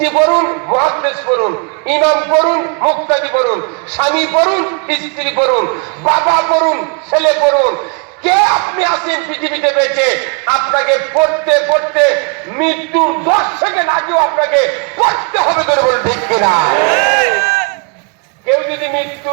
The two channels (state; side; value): quieter; left; 36.6 dB